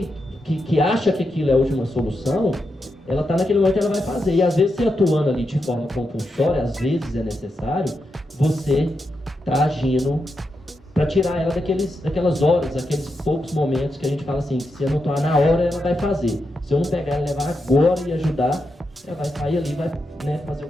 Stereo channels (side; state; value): both; normal; correlation 0.86